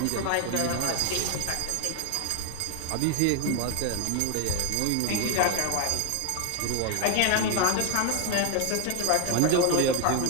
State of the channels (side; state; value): both; different; correlation 0.01